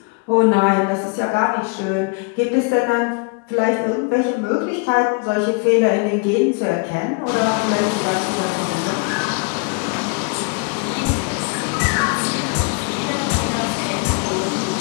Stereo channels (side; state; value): right; quieter; 33.7 dB